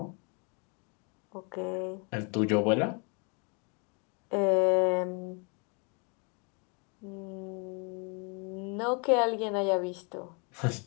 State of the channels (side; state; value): right; quieter; 34.5 dB